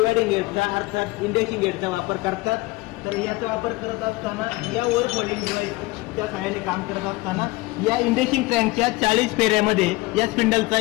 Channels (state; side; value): quieter; right; 21.6 dB